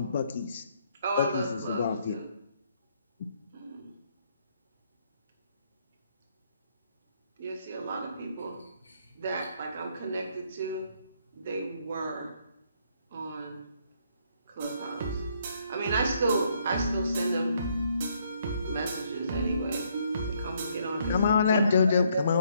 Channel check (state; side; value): inverted; both; correlation -0.70